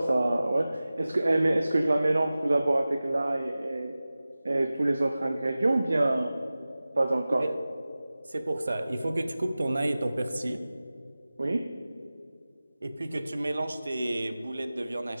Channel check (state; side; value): inverted; both; correlation -0.97